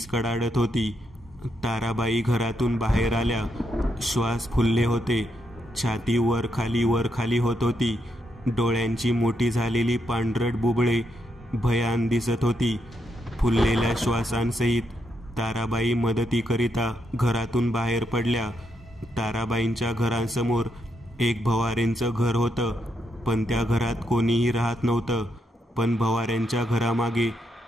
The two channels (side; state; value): both; normal; correlation 0.80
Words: कडाडत होती. ताराबाई घरातून बाहेर आल्या. श्वास फुलले होते. छाती वर खाली होत होती. डोळ्यांची मोठी झालेली पांढरट बुबळे भयान दिसत होती. फुललेल्या श्वासांसहित ताराबाई मदतीकरिता घरातून बाहेर पडल्या. ताराबाईंच्या घरासमोर एक भवारेंचं घर होतं, पण त्या घरात कोणीही राहत नव्हतं. पण भवाऱ्यांच्या घरामागे